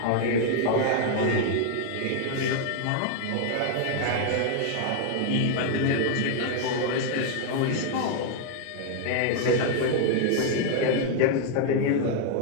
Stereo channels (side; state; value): both; different; correlation 0.00